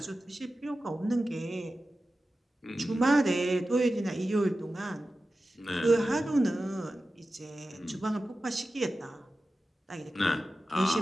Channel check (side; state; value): both; normal; correlation 0.94